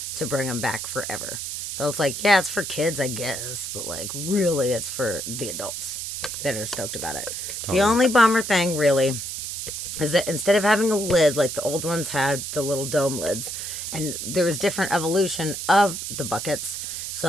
to bring them back forever. So it's like, yeah, it's for kids, I guess. But like, really, it's for the adults that are stoked about it. Totally. The only bummer thing, really, is that instead of having a lid like the old ones had, the little dome lids, and there was different evolution of the buckets.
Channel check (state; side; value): noise; right; hiss, 5 dB below the sound